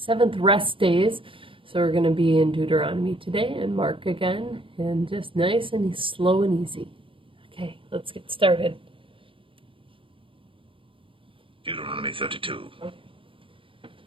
rest days. So we're going to be in Deuteronomy today and Mark again, and just nice and slow and easy. Okay, let's get started. Deuteronomy 32.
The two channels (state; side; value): late; left; 0.25 ms